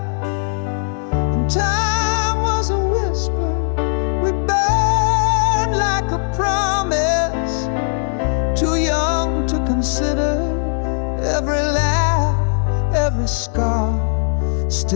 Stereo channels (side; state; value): right; silent; 67 dB below the other